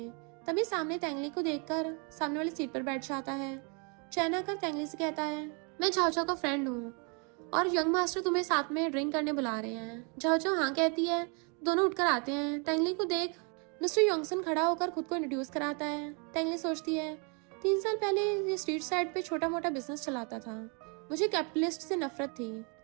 तभी सामने तेंगली को देखकर सामने वाली सीट पर बैठ जाता है। चेन आकर तेंगली से कहता है, मैं झाओ झाओ का फ्रेंड हूँ और यंग मास्टर तुम्हें साथ में ड्रिंक करने बुला रहे हैं। झाओ झाओ हाँ कहती है। दोनों उठकर आते हैं। तेंगली को देख मिस्टर योंगसन खड़ा होकर खुद को इंट्रोड्यूस कराता है। तेंगली सोचती है, 3 साल पहले ये स्ट्रीट साइड पे छोटा मोटा बिजनेस चलाता था। मुझे कैपिटलिस्ट से नफरत थी,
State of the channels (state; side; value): quieter; left; 34.9 dB